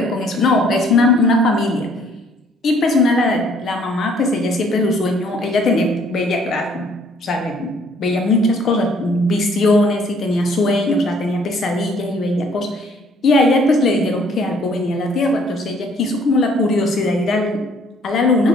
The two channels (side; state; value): both; normal; correlation 0.61